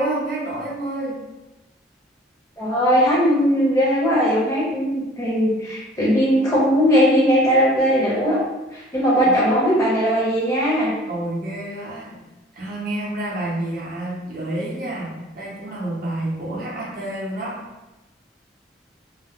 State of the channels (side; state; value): both; normal; correlation 0.49